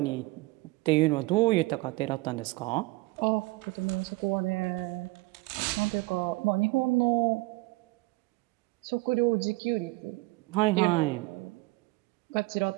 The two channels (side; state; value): left; quieter; 22.7 dB